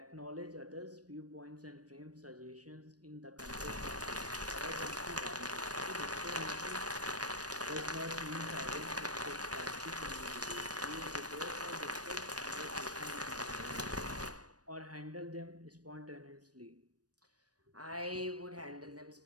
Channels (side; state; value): left; late; 0.68 ms